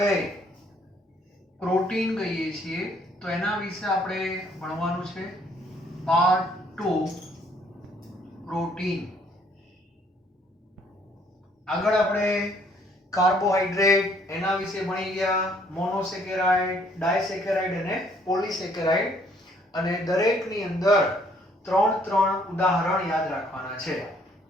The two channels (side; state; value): both; normal; correlation 0.64